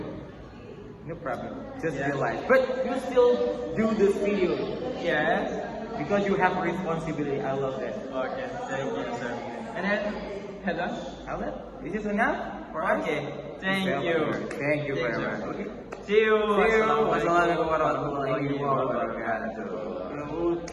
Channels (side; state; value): both; identical; correlation 1.00